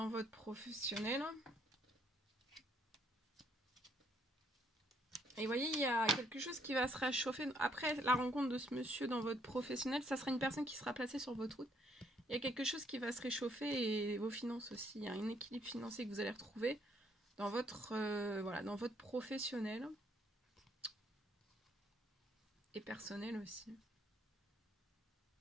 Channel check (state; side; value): normal; both; correlation 0.69